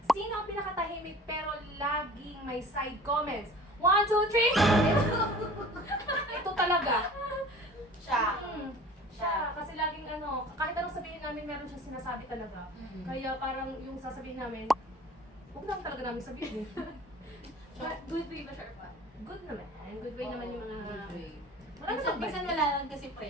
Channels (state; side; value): normal; both; correlation 0.44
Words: Sino ang pinakatahimik pero laging may side comments? 1, 2, 3! Ito talaga. Siya. Siya. Kasi laging kahit anong sabihin namin, meron siyang sinasabi talaga. Kaya parang yung sasabihin namin, huwag lang talaga namin sabihin. But good way ba, Sharpa? Good naman. Good way naman yung mga... Good way. Wala namang Minsan bad. wala lang kasi